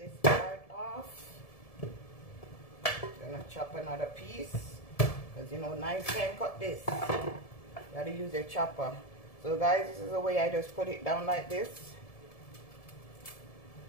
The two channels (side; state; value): right; late; 1.7 ms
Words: part off. Gonna chop another piece. Because you know, knives can't cut this. You gotta use your chopper. So guys, this is the way I just put it down like this.